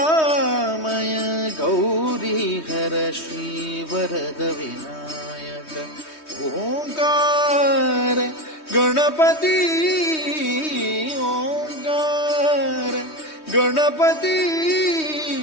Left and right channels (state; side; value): late; right; 3.2 ms